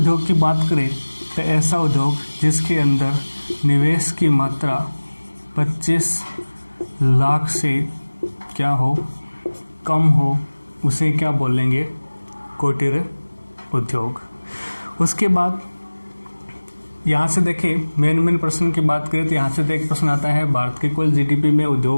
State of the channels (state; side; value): inverted; both; correlation -1.00